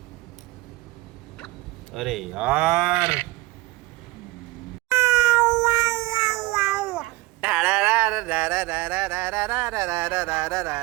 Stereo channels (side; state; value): left; quieter; 20.2 dB